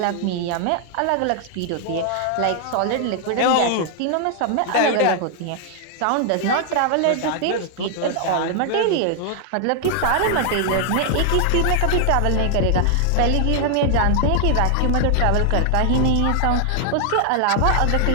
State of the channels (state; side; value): different; both; correlation 0.00